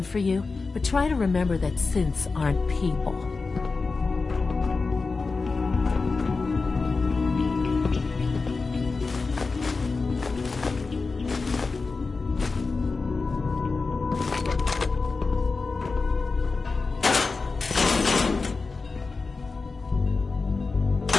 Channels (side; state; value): right; quieter; 4.1 dB